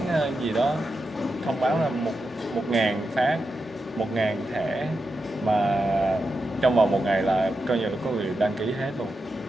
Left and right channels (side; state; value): both; normal; correlation 0.88